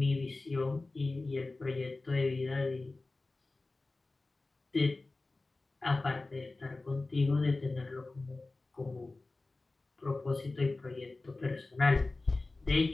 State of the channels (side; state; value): right; quieter; 3.3 dB